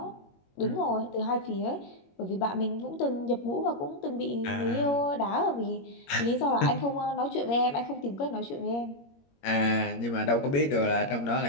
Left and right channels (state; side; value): late; right; 21 ms